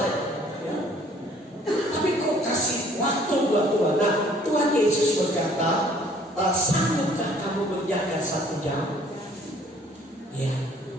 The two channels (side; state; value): both; normal; correlation 0.57